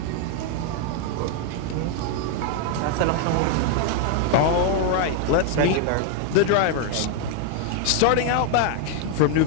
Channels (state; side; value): different; both; correlation 0.00